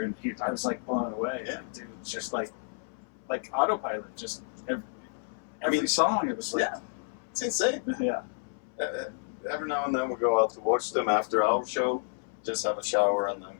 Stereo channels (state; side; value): silent; right; 58 dB below the other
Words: and I was like blown away. Yeah. Like, dude, it's just like autopilot. Just every song. It was like, it's insane. yeah. Every now and then we go out to watch them after our show, just have a shower, and then